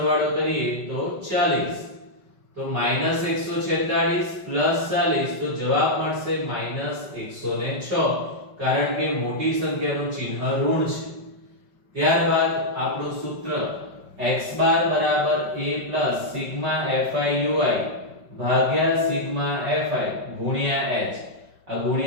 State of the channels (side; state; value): left; late; 5.2 ms